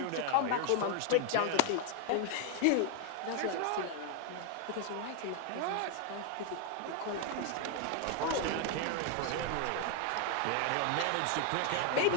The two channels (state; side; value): different; both; correlation 0.01